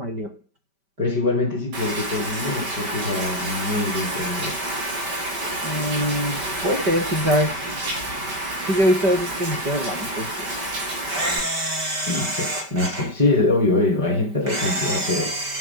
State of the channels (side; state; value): left; late; 5.1 ms